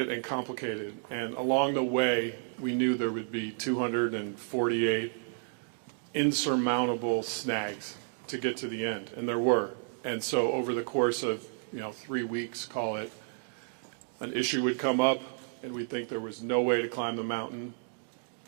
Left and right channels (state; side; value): silent; left; digital silence